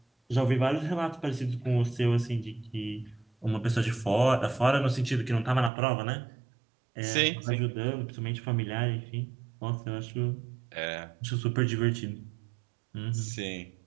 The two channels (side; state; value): left; drops out; at 5.7 s